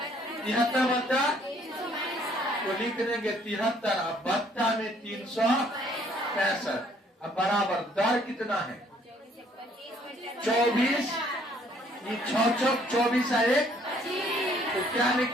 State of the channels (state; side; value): normal; both; correlation 0.63